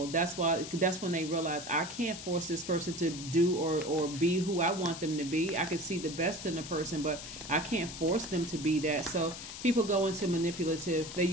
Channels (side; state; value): left; noise; hiss, 10 dB below the sound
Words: That's when they realize, I can't force this person to do or be who I want them to be. I can see the best in the person, but I can't force them to be that. So people go into they